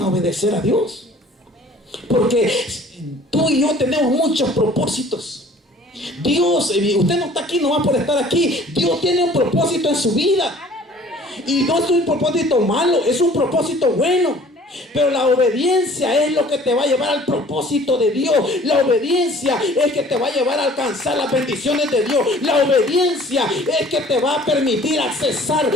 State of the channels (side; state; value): both; normal; correlation 0.51